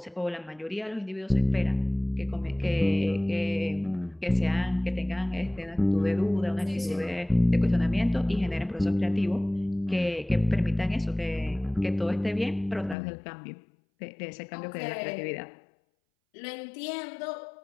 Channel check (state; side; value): drops out; right; at 13.0 s